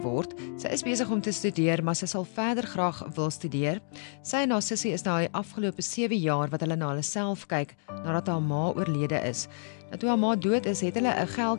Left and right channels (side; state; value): right; silent; digital silence